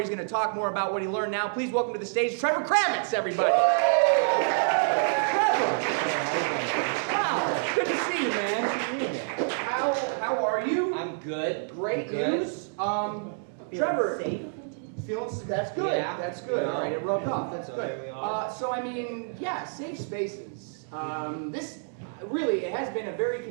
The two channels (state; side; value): silent; left; digital silence